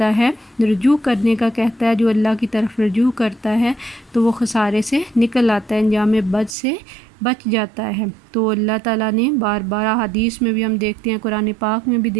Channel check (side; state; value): left; drops out; at 6.6 s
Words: ہے، رجوع کرنے کا کہتا ہے، جو اللہ کی طرف رجوع کرتا ہے تو وہ خسارے سے نکل آتا ہے، انجام بد سے بچ جاتا ہے۔ تو اللہ تعالیٰ نے بار بار حدیث میں بھی ہم دیکھتے ہیں، قرآن پاک میں بھی